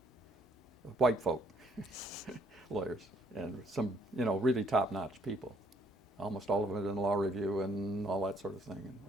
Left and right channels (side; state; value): both; normal; correlation 0.66